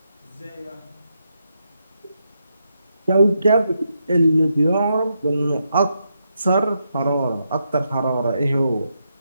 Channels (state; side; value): inverted; both; correlation -0.82